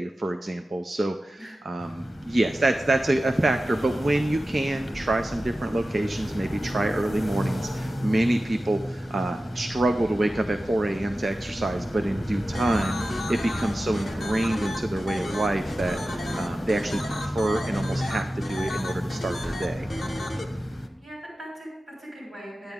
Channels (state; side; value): normal; both; correlation 0.94